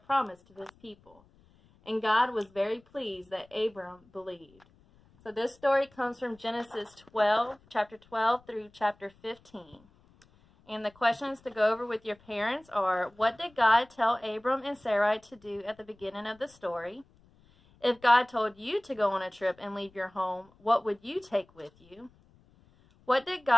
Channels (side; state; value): left; noise; rumble, 30 dB below the sound